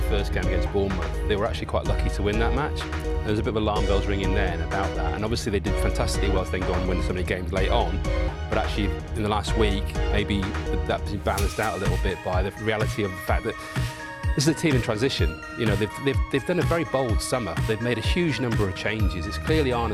first game against Bournemouth, they were actually quite lucky to win that match. There was a bit of alarm bells ringing then about that, and obviously they did fantastically well to go and win so many games late on, but actually in the last week, maybe that's been balanced out a little bit by the reality of the fact that this is a team in transition. They've done a very bold summer. They've made a huge number of changes. It's clearly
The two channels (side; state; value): both; identical; correlation 1.00